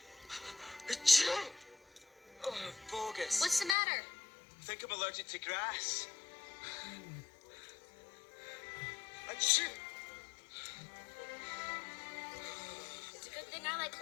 Oh, bogus. What's the matter? I think I'm allergic to grass. Achoo! It's a good thing I like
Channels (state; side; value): drops out; right; at 3.8 s